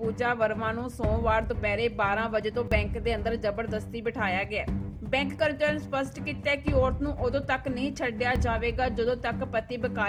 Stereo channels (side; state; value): both; identical; correlation 1.00